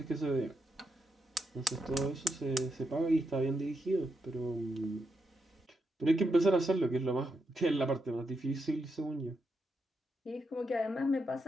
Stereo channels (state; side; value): normal; both; correlation 0.84